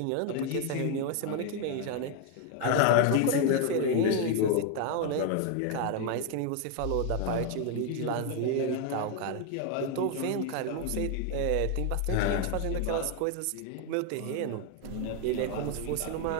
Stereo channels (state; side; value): different; both; correlation 0.01